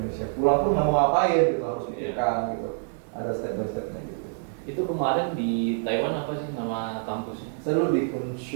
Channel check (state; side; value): silent; left; digital silence